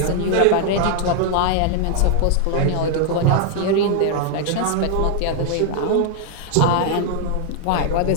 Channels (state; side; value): different; both; correlation 0.00